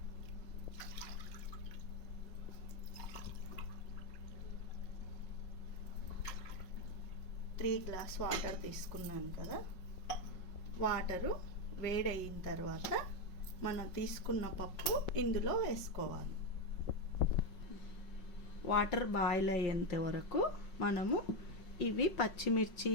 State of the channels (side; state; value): right; late; 5.4 ms